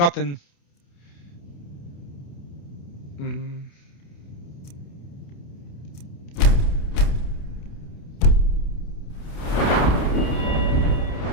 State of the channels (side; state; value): right; late; 28 ms